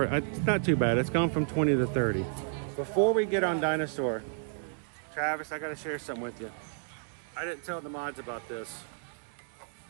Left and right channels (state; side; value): silent; left; digital silence